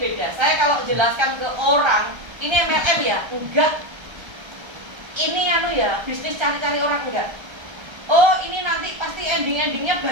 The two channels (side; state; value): left; late; 1.3 ms